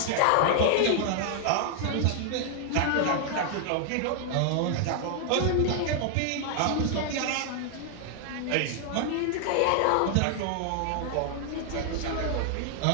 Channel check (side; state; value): both; different; correlation 0.00